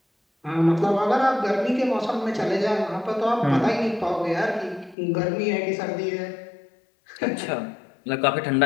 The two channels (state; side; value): drops out; right; at 5.0 s